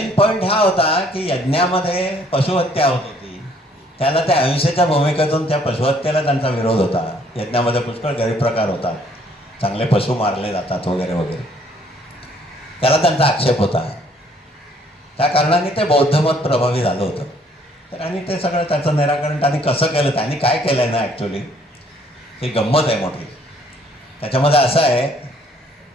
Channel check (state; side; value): normal; both; correlation 0.63